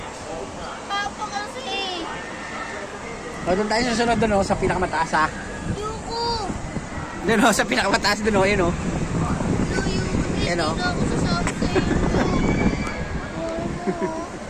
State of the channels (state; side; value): identical; both; correlation 1.00